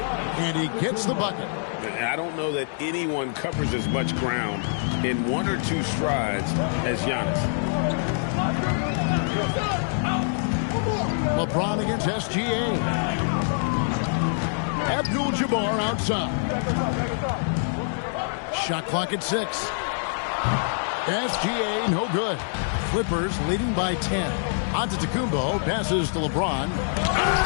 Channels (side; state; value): right; silent; digital silence